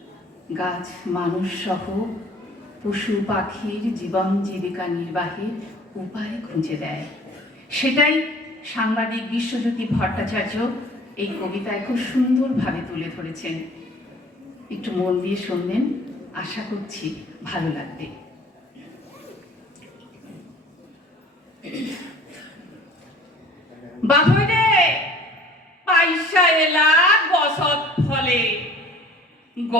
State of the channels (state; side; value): normal; both; correlation 0.50